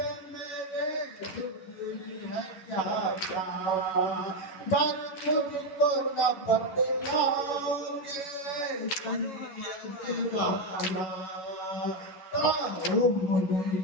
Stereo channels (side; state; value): right; late; 11 ms